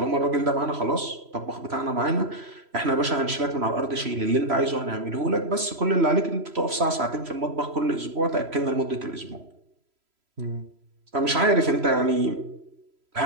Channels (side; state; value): left; late; 3.0 ms